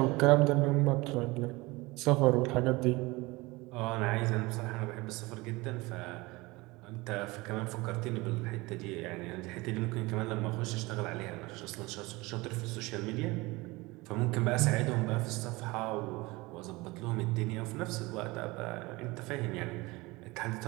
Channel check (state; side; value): quieter; left; 22.7 dB